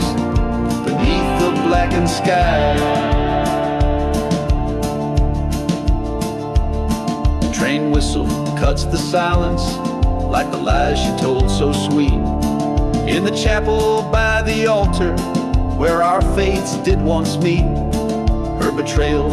beneath the blackened sky. Train whistle cuts the silence like the lies she told so sweet, in the chapel by the altar where our fates did once meet. Her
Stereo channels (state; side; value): identical; both; correlation 1.00